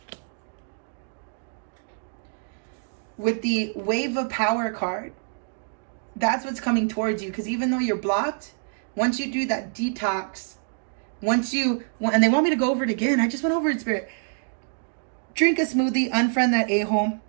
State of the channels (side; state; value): left; silent; digital silence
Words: With the Wave of Power card, that's what's coming towards you. Because even though you're blocked, once you do that detox, and they want me to go over it again. I just went over it, Spirit. Drink a smoothie, unfriend that a-hole,